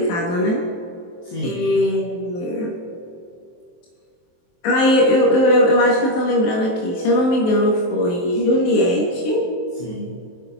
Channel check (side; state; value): right; late; 23 ms